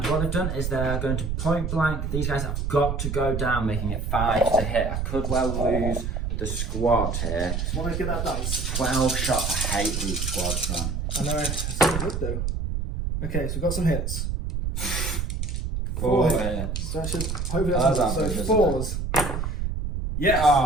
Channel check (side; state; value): right; noise; rumble, 2 dB below the sound